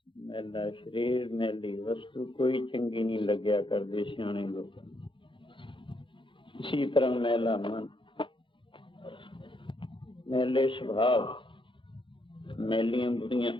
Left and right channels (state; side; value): late; right; 0.24 ms